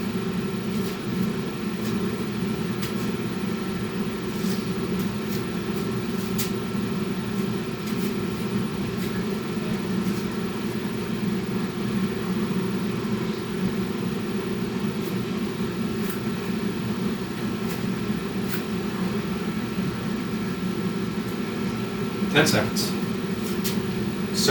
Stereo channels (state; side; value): noise; right; hum, 27 dB below the sound